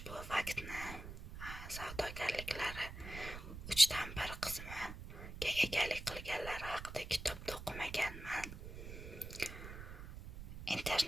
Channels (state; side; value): noise; right; rumble, 10 dB below the sound